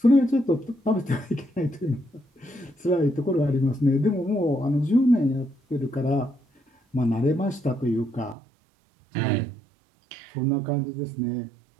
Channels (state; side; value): drops out; left; at 8.3 s